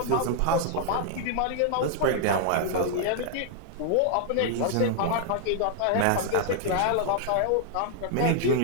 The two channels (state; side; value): different; both; correlation 0.00